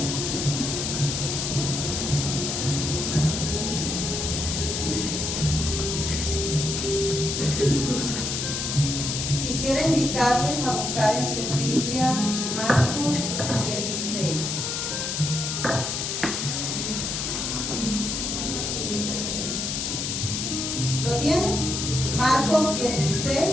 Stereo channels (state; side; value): noise; left; hiss, 2 dB below the sound